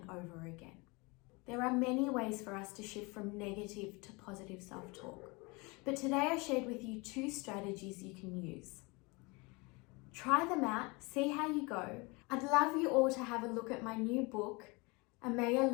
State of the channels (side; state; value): right; quieter; 27.1 dB